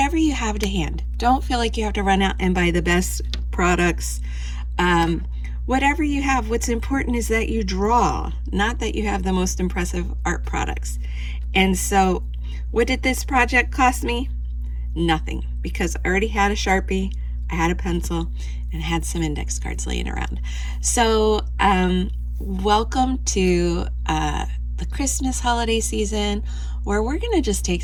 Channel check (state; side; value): identical; both; correlation 1.00